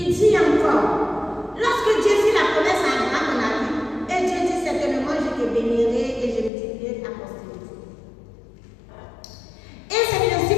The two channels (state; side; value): drops out; right; at 6.5 s